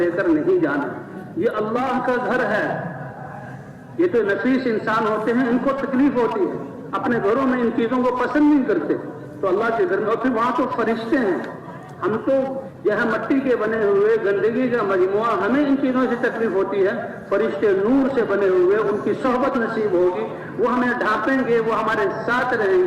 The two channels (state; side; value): identical; both; correlation 1.00